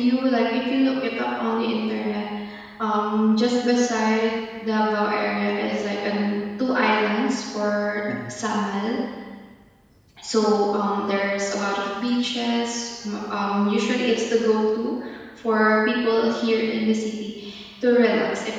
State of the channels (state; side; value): identical; both; correlation 1.00